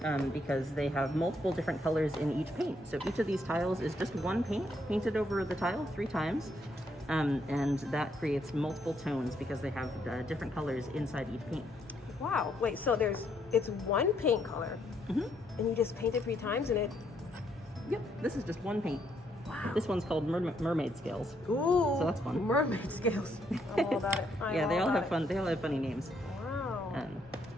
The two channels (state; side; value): normal; both; correlation 0.73